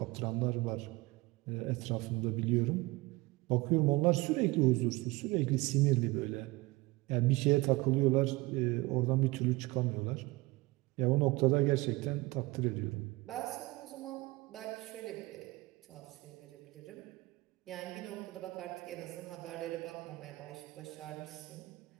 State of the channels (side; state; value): left; quieter; 21.9 dB